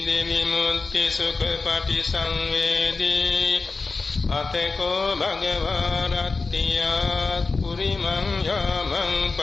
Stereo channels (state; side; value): quieter; right; 4.1 dB